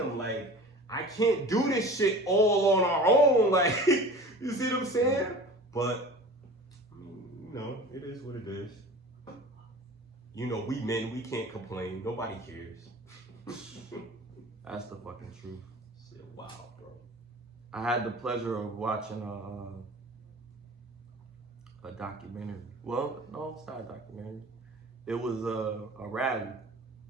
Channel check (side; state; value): both; normal; correlation 0.39